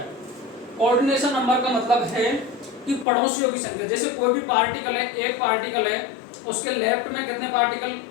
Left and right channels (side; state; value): right; drops out; at 3.1 s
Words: कोऑर्डिनेशन नंबर का मतलब है कि पड़ोसियों की संख्या। जैसे कोई भी पार्टिकल है, एक पार्टिकल है, उसके लेफ्ट में कितने पार्टिकल